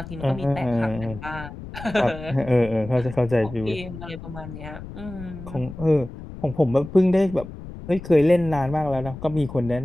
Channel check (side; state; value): left; noise; rumble, 12 dB below the sound